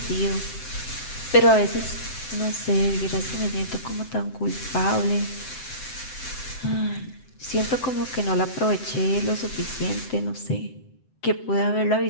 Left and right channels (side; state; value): right; late; 7.8 ms